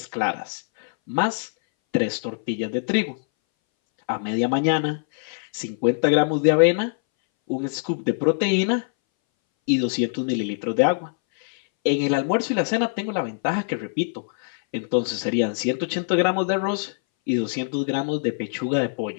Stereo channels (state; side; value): silent; right; 61 dB below the other